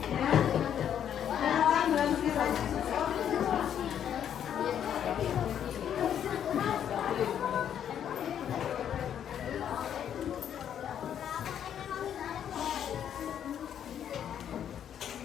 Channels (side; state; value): right; quieter; 9.4 dB